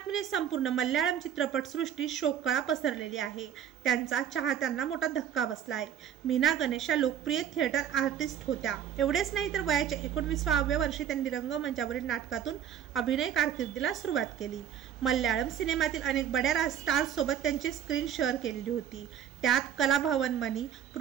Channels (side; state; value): left; quieter; 9.6 dB